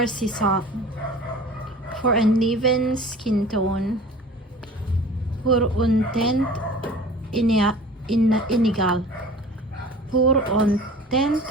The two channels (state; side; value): normal; both; correlation 0.42